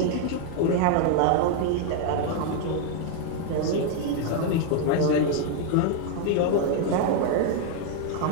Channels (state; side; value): different; both; correlation 0.00